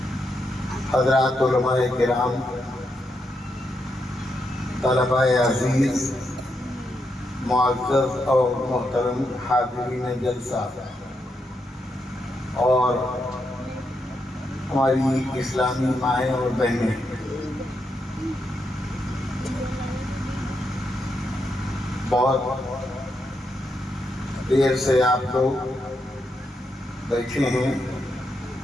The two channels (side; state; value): both; normal; correlation 0.82